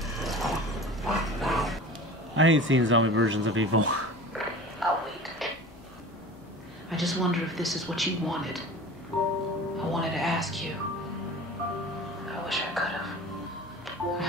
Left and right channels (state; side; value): normal; both; correlation 0.38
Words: I hate seeing zombie versions of evil. I'll wait. I just wonder if this is what you wanted. I wanted to ask you. I wish I could have. I